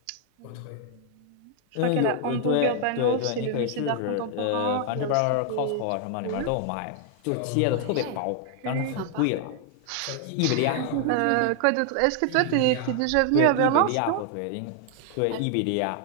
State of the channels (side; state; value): both; different; correlation 0.00